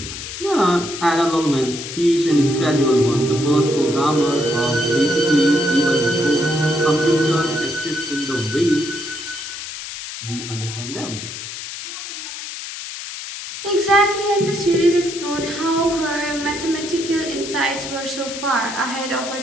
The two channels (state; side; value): noise; left; hiss, 9 dB below the sound